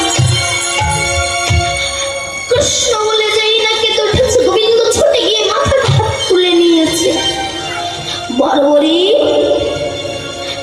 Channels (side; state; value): both; identical; correlation 1.00